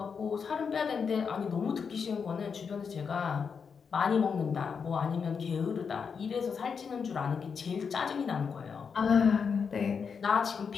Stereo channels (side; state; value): right; quieter; 6.1 dB